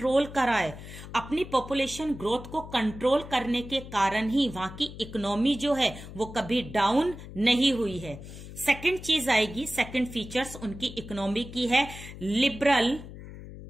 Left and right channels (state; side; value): noise; left; hum, 13 dB below the sound